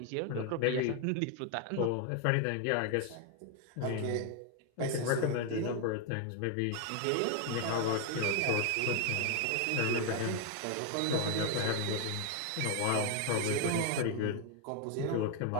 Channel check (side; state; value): both; different; correlation 0.01